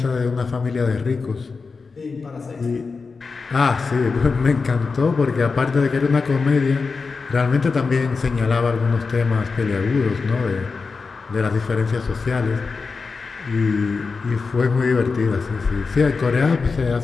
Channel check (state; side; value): quieter; right; 4.6 dB